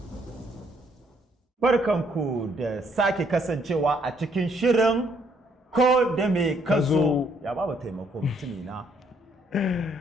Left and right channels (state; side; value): normal; both; correlation 0.69